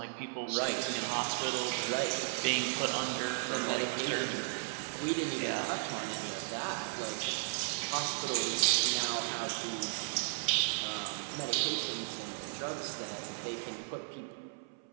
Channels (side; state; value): left; silent; 54 dB below the other